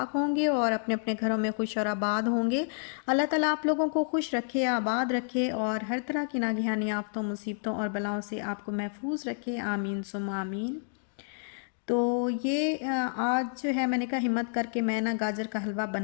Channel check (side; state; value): right; silent; digital silence